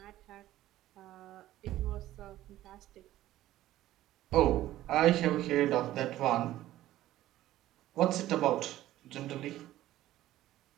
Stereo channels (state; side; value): quieter; left; 14.5 dB